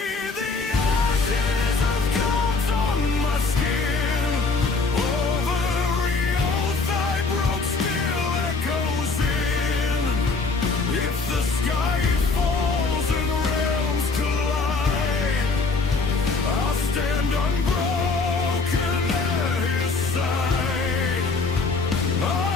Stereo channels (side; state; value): right; quieter; 4.1 dB